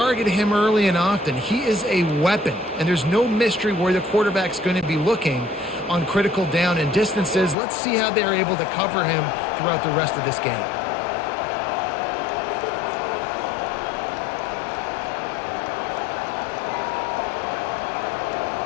him early and often. He is a weapon, and there's no mystery where the quarterback's going to be looking on critical down and distances. Let's see how they're able to cover him throughout the rest of this game.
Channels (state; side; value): drops out; right; at 7.6 s